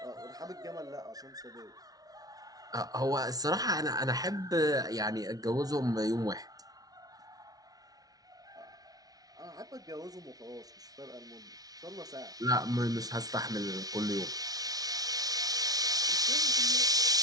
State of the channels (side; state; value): left; late; 0.18 ms